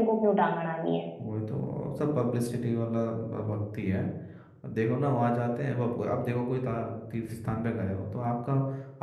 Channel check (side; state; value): both; identical; correlation 1.00